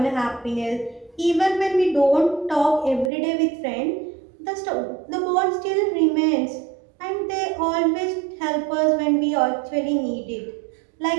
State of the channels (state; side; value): drops out; left; at 3.1 s